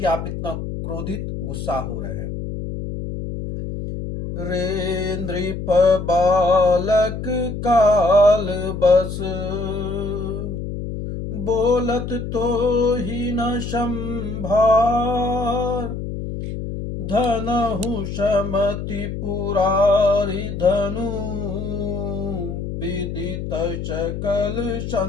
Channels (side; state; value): left; noise; hum, 6 dB below the sound